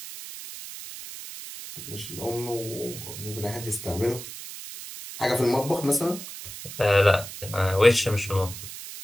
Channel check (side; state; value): right; noise; hiss, 11 dB below the sound